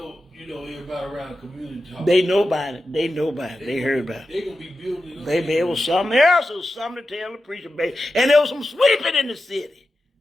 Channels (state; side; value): normal; both; correlation 0.91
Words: you know everybody around the community talking. They know about it. They heard about it. They're gonna be building it up. Baby, it was something else. It was something to tell the preacher, baby. And there was some sweeping in the city.